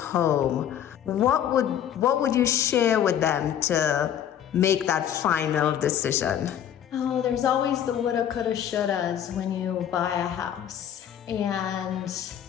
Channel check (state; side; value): quieter; right; 10.0 dB